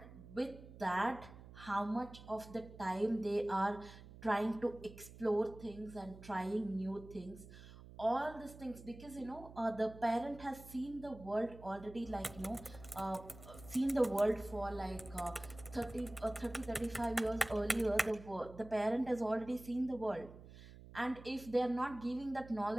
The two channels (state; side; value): noise; right; hum, 17 dB below the sound